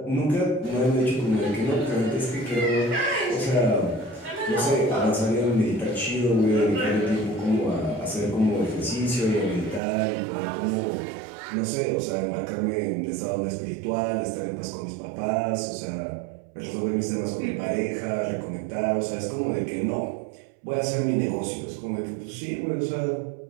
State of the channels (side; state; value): left; drops out; at 9.8 s